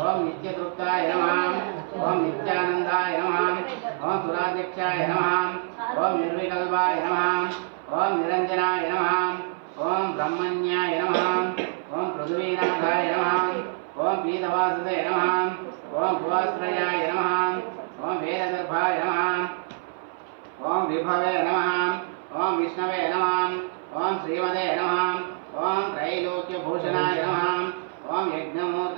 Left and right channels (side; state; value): left; silent; 58 dB below the other